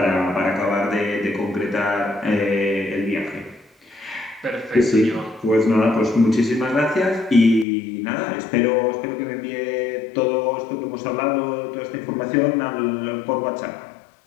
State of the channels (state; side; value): drops out; right; at 7.7 s